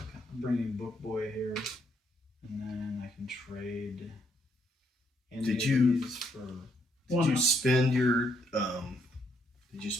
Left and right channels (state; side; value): normal; both; correlation 0.73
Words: I'm bringing Book Boy here, and then I can trade. Any Did of you- these for? Did you spend your? Did you